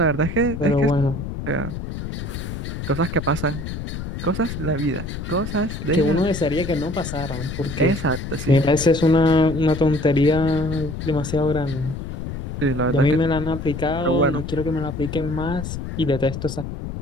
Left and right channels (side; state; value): left; noise; rumble, 6 dB below the sound